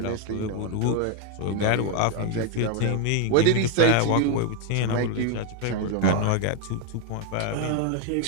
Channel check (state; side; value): different; both; correlation 0.01